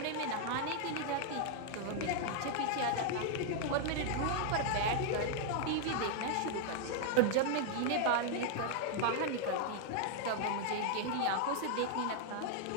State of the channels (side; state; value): both; different; correlation 0.00